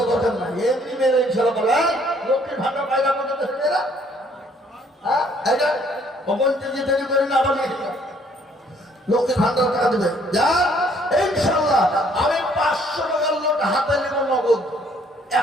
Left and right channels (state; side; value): normal; both; correlation 0.63